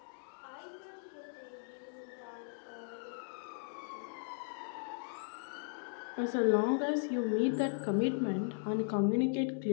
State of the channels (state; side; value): silent; right; digital silence